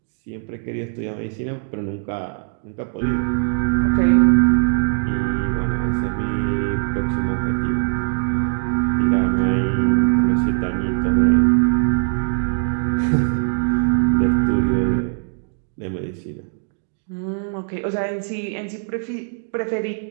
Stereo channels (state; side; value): silent; left; digital silence